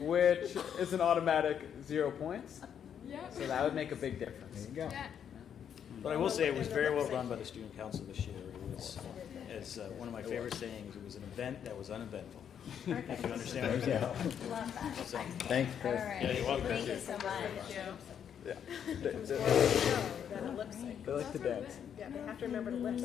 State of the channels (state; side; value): quieter; right; 8.5 dB